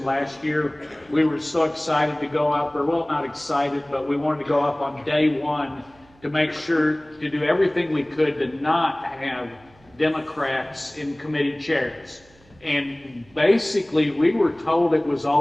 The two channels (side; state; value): right; noise; hum, 29 dB below the sound